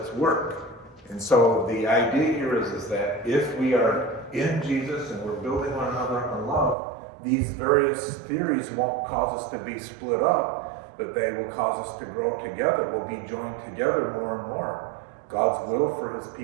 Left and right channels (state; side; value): drops out; left; at 6.8 s